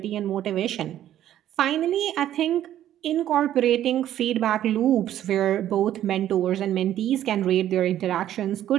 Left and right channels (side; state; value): left; quieter; 11.9 dB